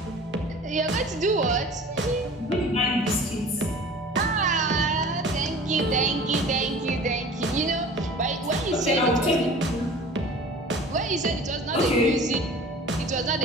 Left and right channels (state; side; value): normal; both; correlation 0.43